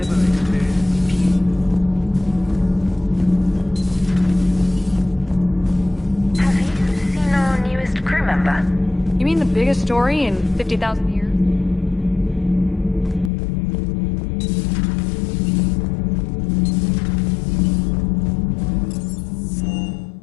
experienced peace. Have you seen our newest crew member? You mean the biggest story in 50,000 years?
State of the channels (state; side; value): drops out; right; at 13.3 s